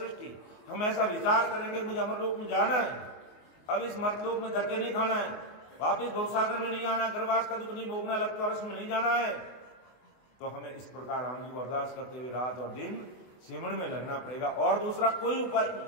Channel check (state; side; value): late; right; 24 ms